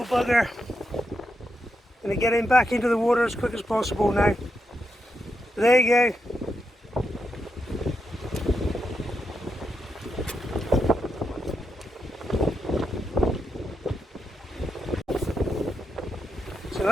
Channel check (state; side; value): normal; both; correlation 0.84